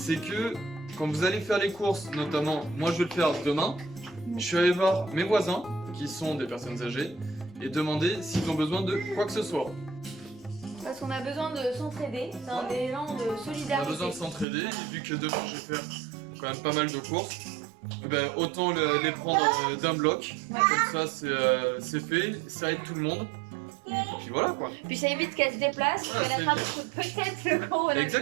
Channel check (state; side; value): drops out; left; at 14.5 s